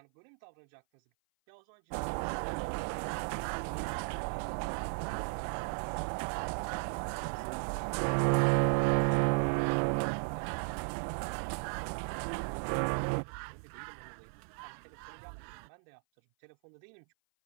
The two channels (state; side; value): silent; left; 54 dB below the other